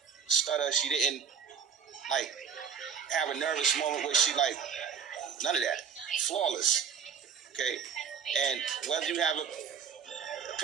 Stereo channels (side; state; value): left; quieter; 6.8 dB